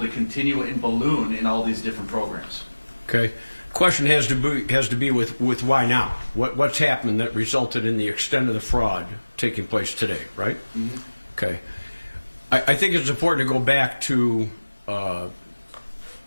continue and balloon in all these different programs? Okay. Question has to be with why now? What's happened that resulted in the extent of the fraud taking place today, right? Mm-hmm. Okay. I think it's important to go back to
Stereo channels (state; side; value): inverted; both; correlation -1.00